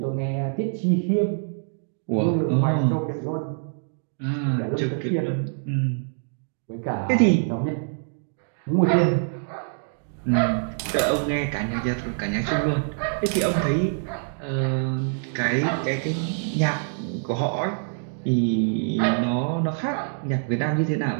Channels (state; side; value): silent; left; 62 dB below the other